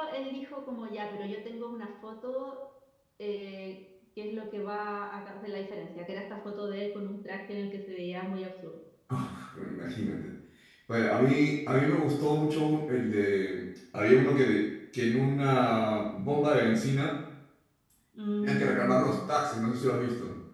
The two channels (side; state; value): both; identical; correlation 1.00